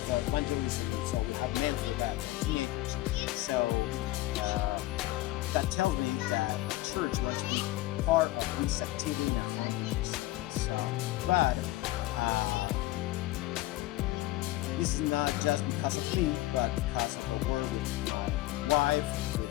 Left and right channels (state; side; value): quieter; right; 16.8 dB